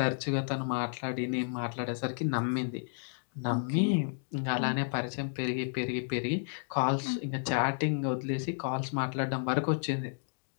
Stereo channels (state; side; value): silent; right; digital silence